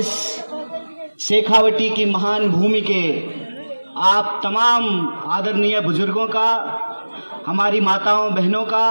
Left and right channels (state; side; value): inverted; both; correlation -1.00